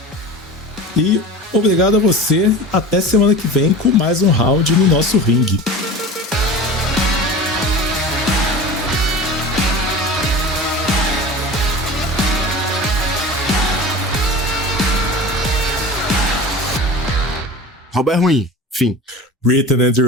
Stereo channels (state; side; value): normal; both; correlation 0.34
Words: E obrigado a você. Até semana que vem com mais um round no nosso ringue. Robert Ruim. Fim. Written and